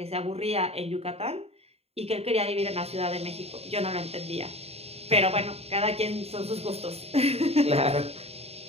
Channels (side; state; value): left; late; 0.30 ms